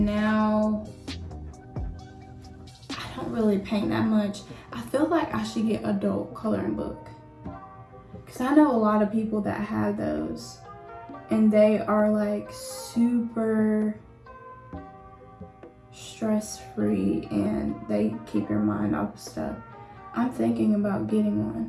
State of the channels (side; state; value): both; identical; correlation 1.00